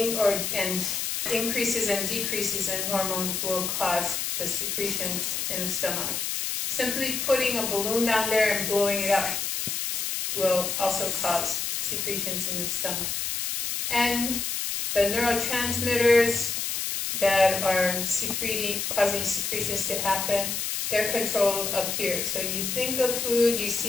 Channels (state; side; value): noise; left; hiss, 1 dB below the sound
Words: increases and decreases in hormones will cause the secretions in the stomach. Simply putting a balloon down there and blowing it up will also cause secretions in the stomach. And the neurotransmitters that are causing secretions to happen, they're controlled up here. So you think of food, you